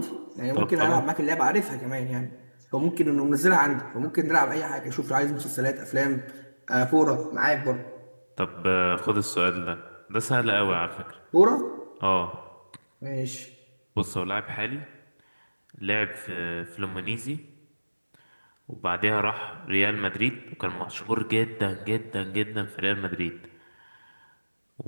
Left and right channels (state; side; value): inverted; both; correlation -1.00